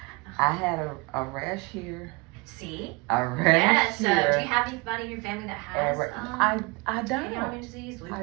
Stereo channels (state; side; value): quieter; left; 27.1 dB